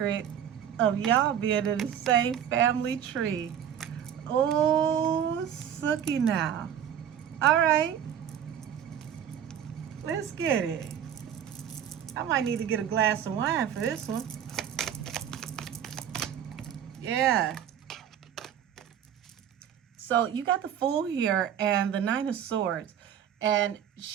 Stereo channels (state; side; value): quieter; left; 9.4 dB